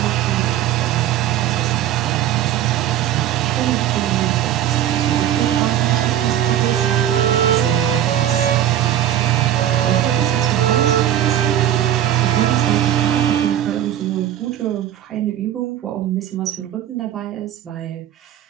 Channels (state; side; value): quieter; left; 11.3 dB